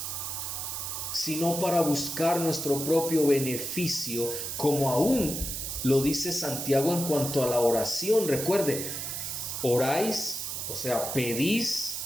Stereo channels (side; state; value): right; noise; hiss, 4 dB below the sound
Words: sino para buscar nuestro propio beneficio, como aún lo dice Santiago en cuanto a la oración. Recuerde, oráis, o sea, pedís,